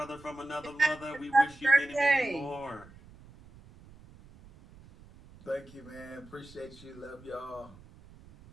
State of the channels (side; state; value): right; noise; rumble, 22 dB below the sound